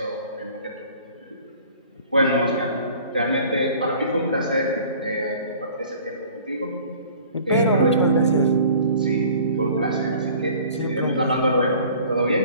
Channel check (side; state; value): both; inverted; correlation -0.49